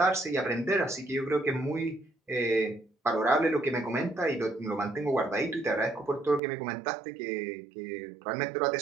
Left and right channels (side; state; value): left; drops out; at 6.4 s